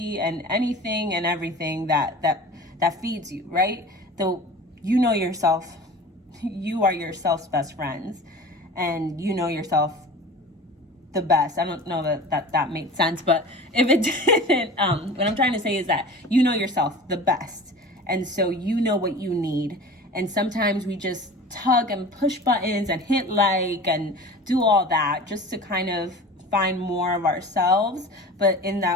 and anything and everything that feeds you, right? Though you know yourself, you are yourself's best friends, and you know yourself the best. I don't know that made sense, but if it didn't, what I'm trying to say is that you know yourself the best. And so you know what you need. And sometimes we just tug and push buttons and hit like and do all that just to kind of find more of ourselves. But in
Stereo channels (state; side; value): normal; both; correlation 0.38